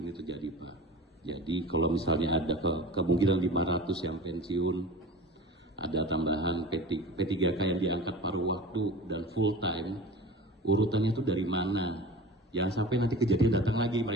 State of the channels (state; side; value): normal; both; correlation 0.36